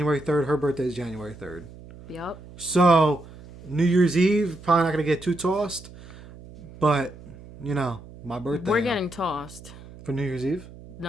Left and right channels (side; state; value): right; noise; hum, 18 dB below the sound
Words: 3rd. Her birthday is January 3rd. Yep. So New Year's Eve, probably not going to get too tossed. But, my birthday. We're getting tossed. For New Year's Eve?